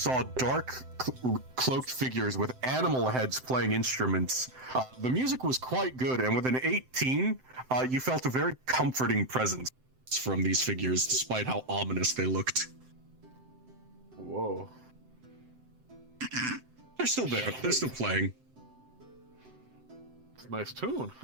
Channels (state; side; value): late; left; 7.8 ms